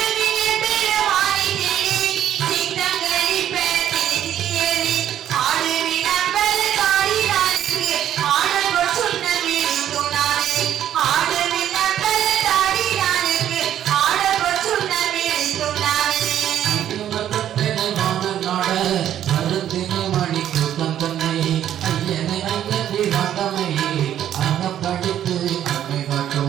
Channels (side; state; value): left; quieter; 10.9 dB